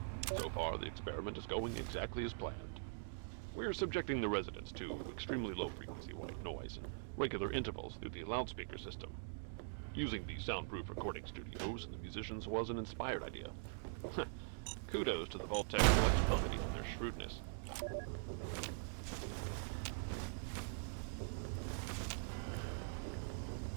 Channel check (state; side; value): silent; left; digital silence